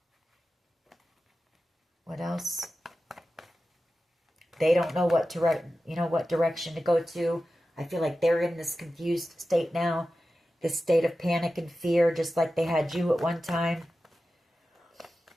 What else? They don't know what direction to go to. I feel like they're in this confused state now, this state of panic and fear, just like they had you at one time.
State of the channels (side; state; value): both; normal; correlation 0.93